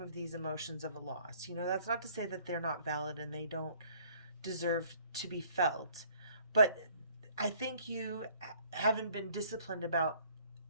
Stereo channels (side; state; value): both; inverted; correlation -0.59